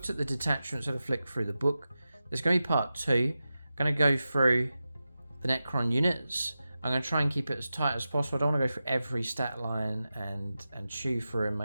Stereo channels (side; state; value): both; inverted; correlation -0.93